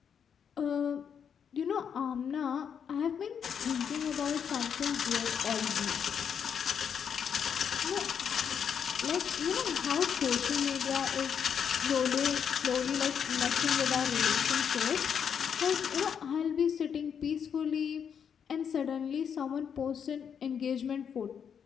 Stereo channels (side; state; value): right; quieter; 7.5 dB